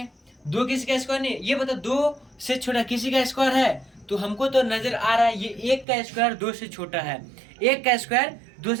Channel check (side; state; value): left; drops out; at 5.9 s